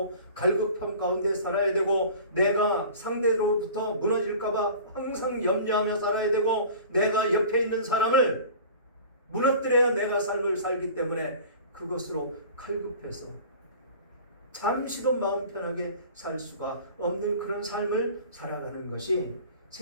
갈급함 가운데 살아야 되고 내가 상대로부터 무너질까봐 항상 염려하며 살아야 되고 내가 옆에 있는 사람을 무너뜨려야 내가 삶을 살기 때문에 그것으로 칼급해서 잠시도 마음 편하게 살 수가 없는 그런 삶을 살아가는 것이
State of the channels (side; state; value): both; inverted; correlation -0.42